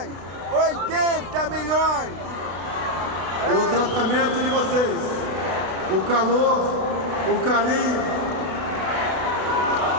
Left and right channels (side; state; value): left; late; 32 ms